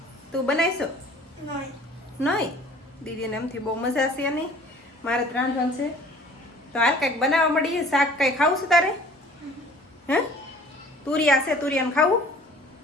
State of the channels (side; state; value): both; normal; correlation 0.50